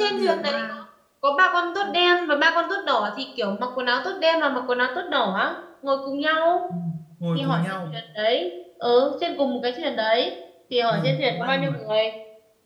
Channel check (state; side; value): identical; both; correlation 1.00